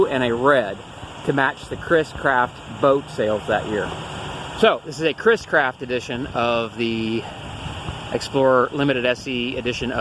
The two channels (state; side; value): identical; both; correlation 1.00